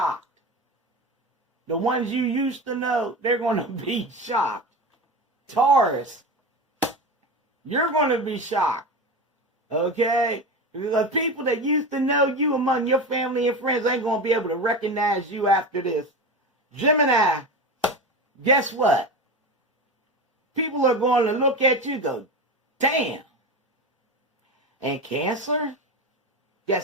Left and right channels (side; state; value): both; normal; correlation 0.24